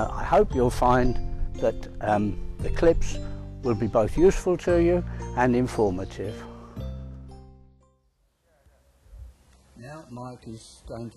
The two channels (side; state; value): both; identical; correlation 1.00